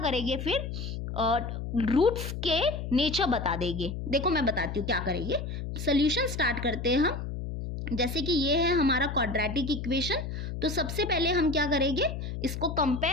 फिर रूट्स के नेचर बता देंगे। देखो मैं बताती हूँ क्या करेंगे। सोल्यूशन स्टार्ट करते हैं हम। जैसे कि ये है हमारा क्वाड्रेटिक इक्वेशन, तो सबसे पहले हम क्या करेंगे, इसको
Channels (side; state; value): left; noise; hum, 6 dB below the sound